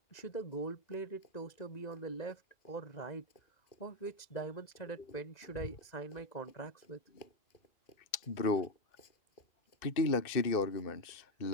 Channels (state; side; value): late; right; 2.6 ms